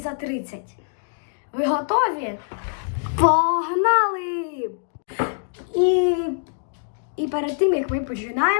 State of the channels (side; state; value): right; silent; digital silence